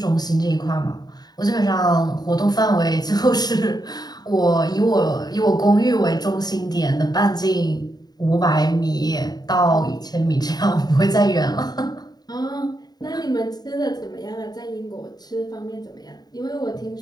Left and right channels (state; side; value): late; right; 0.19 ms